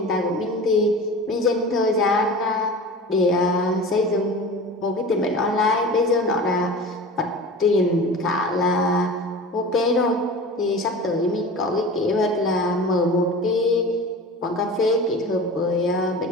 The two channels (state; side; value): normal; both; correlation 0.35